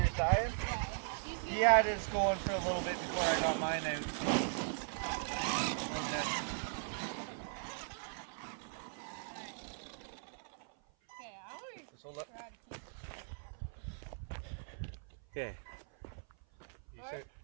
dying? Yeah. He had his going for a little bit before I got mine out, so. Okay, I want to Just hold up. try to keep it. Okay. You All start. right.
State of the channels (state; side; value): silent; left; 52 dB below the other